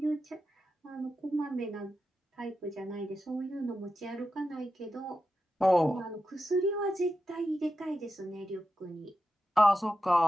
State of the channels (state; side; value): normal; both; correlation 0.89